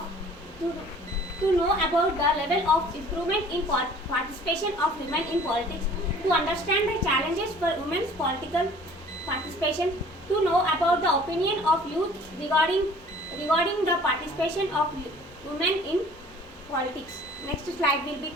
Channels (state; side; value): normal; both; correlation 0.50